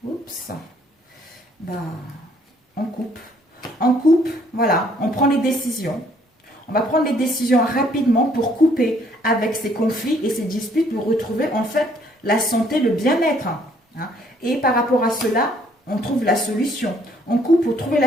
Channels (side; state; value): both; normal; correlation 0.64